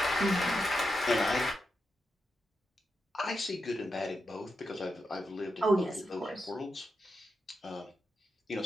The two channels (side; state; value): both; normal; correlation 0.87